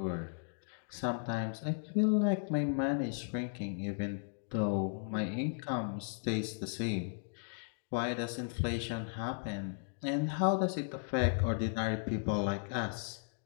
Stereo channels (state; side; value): silent; right; digital silence